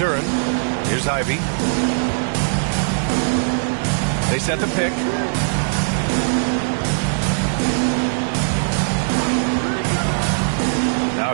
Here's Ivy. They set the pick. Now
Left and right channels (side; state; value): left; silent; digital silence